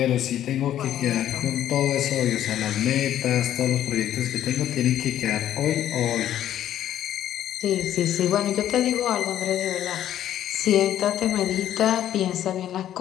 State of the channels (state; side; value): quieter; right; 11.5 dB